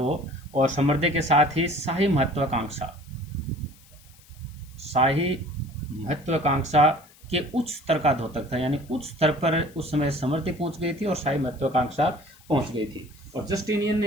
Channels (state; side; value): noise; left; hiss, 26 dB below the sound